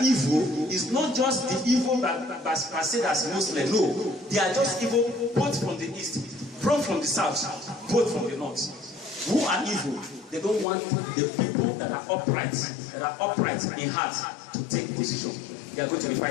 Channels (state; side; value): drops out; right; at 10.7 s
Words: is not just the evil that per se as Muslim. No, they are just evil both from the east, from the south, both from the north. Who are evil? They don't want the people that are upright in heart to take decision. They are going to be